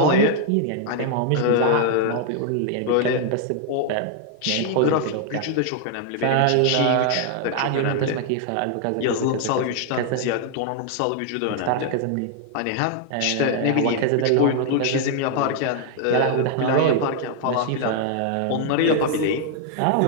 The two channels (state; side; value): different; both; correlation 0.00